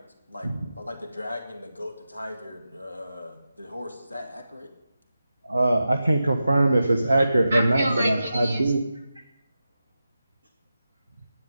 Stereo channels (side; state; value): both; inverted; correlation -0.91